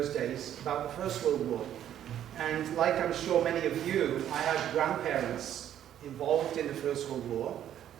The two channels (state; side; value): quieter; left; 10.7 dB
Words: days about the First World War. And like I'm sure many of you, I had grandparents involved in the First World War.